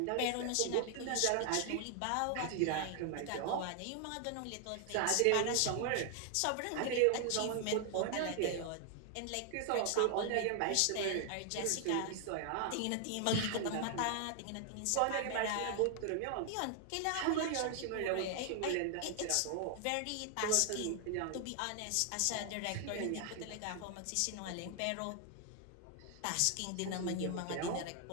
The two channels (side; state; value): both; different; correlation 0.00